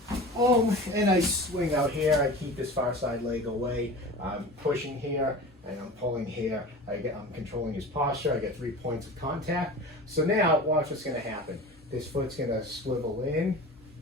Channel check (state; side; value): normal; both; correlation 0.35